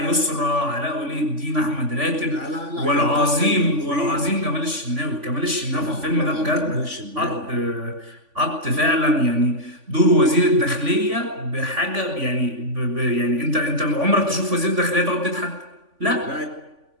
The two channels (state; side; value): late; left; 3.5 ms